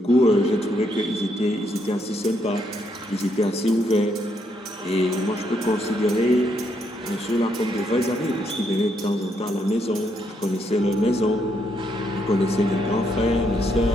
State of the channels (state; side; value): normal; both; correlation 0.75